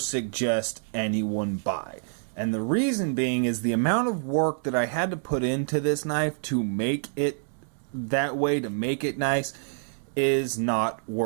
anyone buy. And the reason being is the amount of work that I had to put into this knife to make it that way, to make it nice, is not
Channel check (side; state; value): left; silent; digital silence